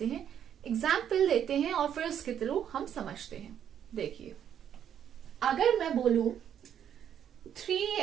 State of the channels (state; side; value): quieter; left; 9.3 dB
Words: हैं, एग्जाम्पल देते हैं और फिर उसके थ्रू हम समझते हैं। देखिए, अगर मैं बोलूं